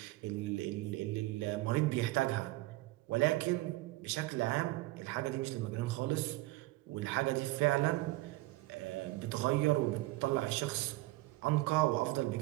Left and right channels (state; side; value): quieter; left; 19.6 dB